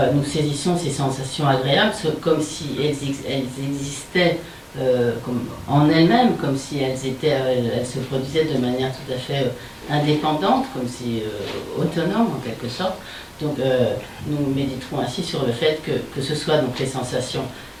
nous saisissons ces sensations agréables comme si elles existaient comme en elles-mêmes, comme si elles se produisaient de manière tout à fait indépendante, comme si autonome en quelque sorte. Donc nous méditerons ainsi sur le fait que ce soit donc les sensations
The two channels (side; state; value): both; identical; correlation 1.00